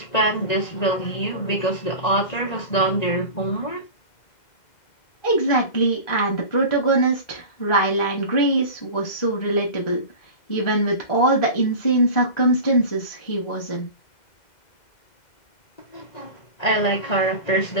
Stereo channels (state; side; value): late; right; 2.0 ms